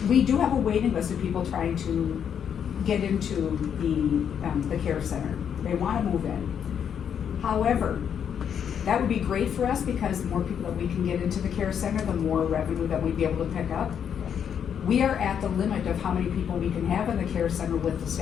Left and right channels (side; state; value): right; quieter; 8.2 dB